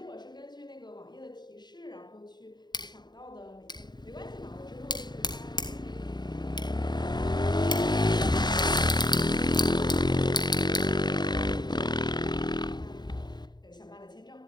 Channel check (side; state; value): right; late; 0.21 ms